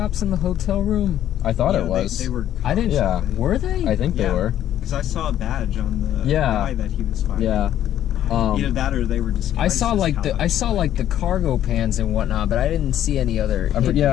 in the hotel room? I thought it was. They were cops. I didn't. Yeah. Were they? I think they were. Because I saw a badge on the guy that he was fighting. Yeah. Either that or they were disguised. I saw like the cargo pans and whatnot, but I didn't see any other. They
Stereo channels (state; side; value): quieter; right; 11.5 dB